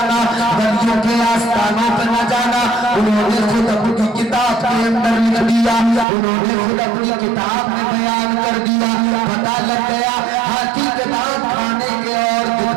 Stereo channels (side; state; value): left; drops out; at 6.1 s